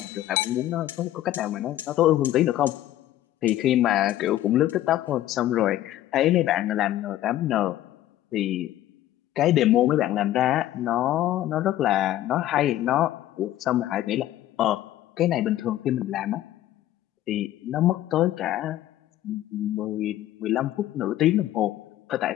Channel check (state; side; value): quieter; right; 13.6 dB